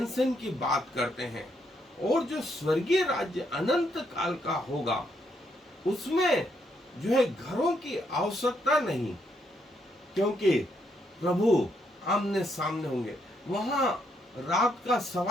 की बात करते हैं, और जो स्वर्गीय राज्य अनंत काल का होगा उसमें जो है घरों की आवश्यकता नहीं, क्योंकि प्रभु आमने सामने होंगे, वहां रात का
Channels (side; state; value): both; normal; correlation 0.75